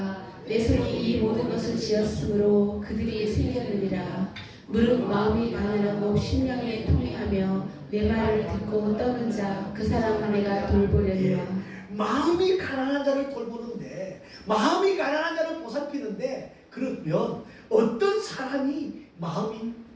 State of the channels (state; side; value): identical; both; correlation 1.00